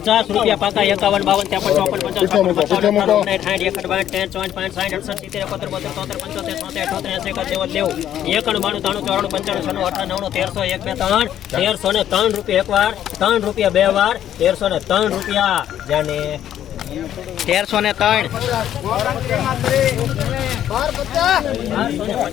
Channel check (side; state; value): right; quieter; 11.0 dB